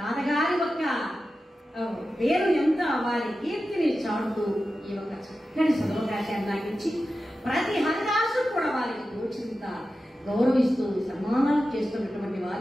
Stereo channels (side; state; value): both; normal; correlation 0.92